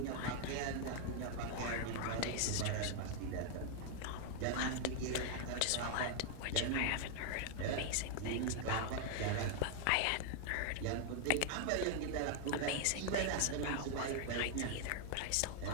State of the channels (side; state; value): both; different; correlation 0.00